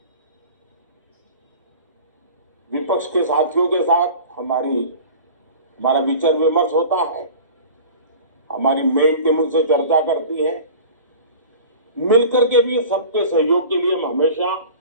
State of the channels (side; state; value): both; inverted; correlation -0.40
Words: विपक्ष के साथियों के साथ हमारा विचार विमर्श होता है, हमारी मेन टीम उनसे चर्चा करती है। मिलकर के भी सबके सहयोग के लिए हम हमेशा